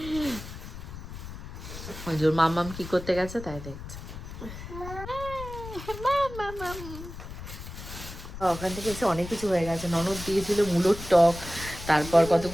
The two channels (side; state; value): left; noise; rumble, 11 dB below the sound